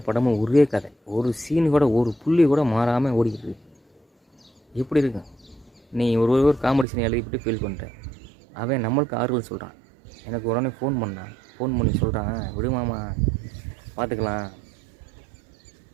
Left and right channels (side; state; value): left; drops out; at 6.9 s